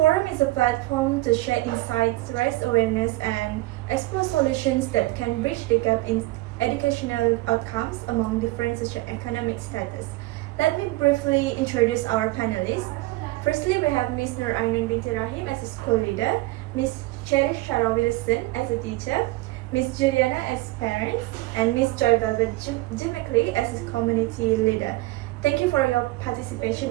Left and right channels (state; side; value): quieter; left; 19.9 dB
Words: is a platform to share insights, raise awareness, and explore solutions that can bridge the gap in educational outcomes among different socioeconomic status. Let me briefly introduce our panelists. Firstly, we have Ms. Nur Ainun binti Rahim as a school leader, Ms. Cherish Shara Wilson as a teacher, Ms. Juliana as parents, and Ms. Joy Velvet Jimickley as a community leader. Thank you for your participation